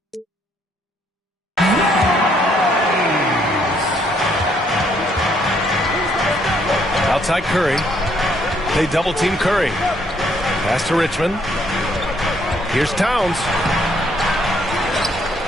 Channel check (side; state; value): both; normal; correlation 0.69